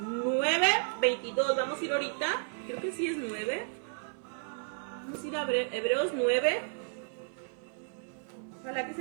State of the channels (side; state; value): left; silent; digital silence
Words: 9:22, vamos a ir ahorita, creo que sí es 9. Vamos a ir a Hebreos 9. Ojalá que